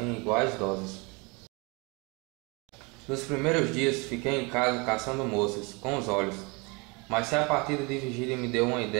iguais doses. Nos primeiros dias fiquei em casa caçando moças, com os olhos. Mas se a partida de Virgília me deu uma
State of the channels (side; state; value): left; quieter; 28.7 dB